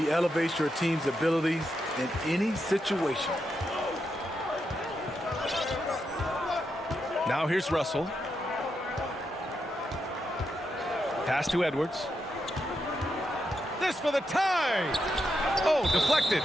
elevates your team's abilities in any situation. Now here's Russell. Pass to Edwards. This for the tie. Oh, deflected.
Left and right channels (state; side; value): normal; both; correlation 0.84